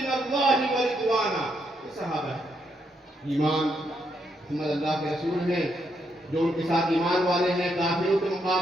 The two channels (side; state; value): both; normal; correlation 0.78